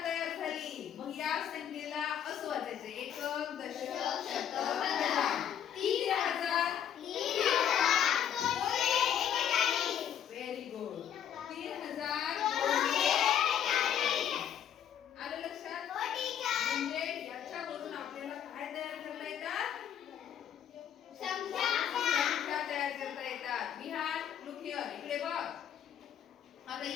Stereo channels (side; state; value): right; quieter; 9.5 dB